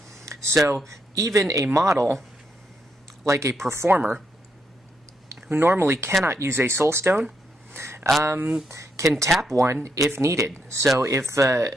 So even a model like a performer, who normally cannot use a Soulstone, can tap one if needed. So if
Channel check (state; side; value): normal; both; correlation 0.79